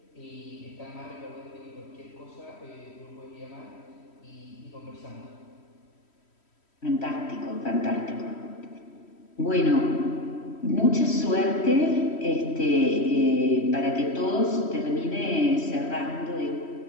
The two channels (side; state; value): right; late; 3.1 ms